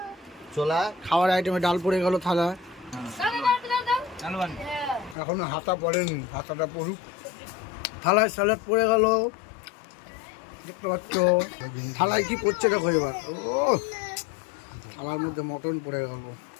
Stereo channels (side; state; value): right; drops out; at 5.2 s